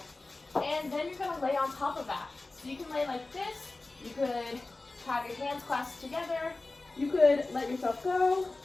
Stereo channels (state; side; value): quieter; right; 3.3 dB